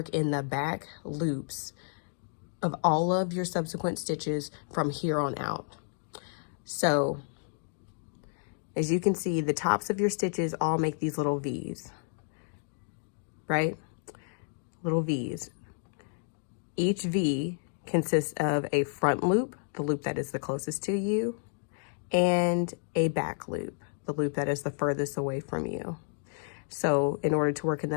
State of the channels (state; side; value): silent; right; digital silence